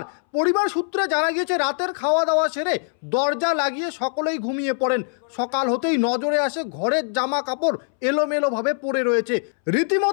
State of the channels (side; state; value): right; silent; 64 dB below the other